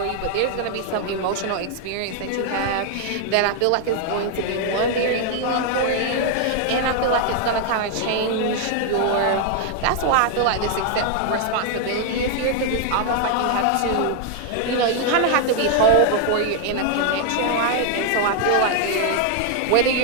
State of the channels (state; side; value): different; both; correlation 0.00